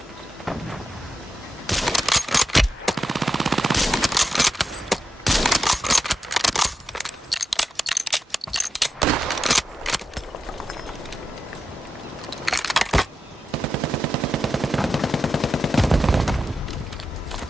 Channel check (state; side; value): normal; both; correlation 0.88